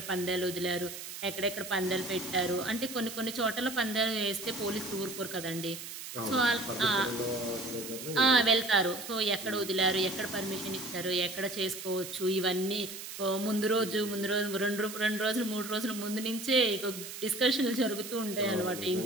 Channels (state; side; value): noise; right; hiss, 10 dB below the sound